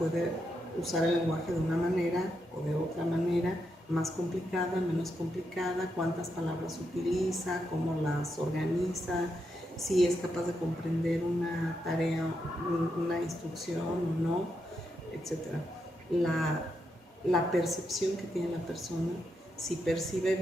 usar el lenguaje de una manera o de otra manera, más complicada, menos complicada, cuántas palabras utiliza, cómo las organiza, si es capaz de comprender una tarea, una instrucción o no, etc. La percepción que tiene la persona, si percibe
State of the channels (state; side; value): normal; both; correlation 0.83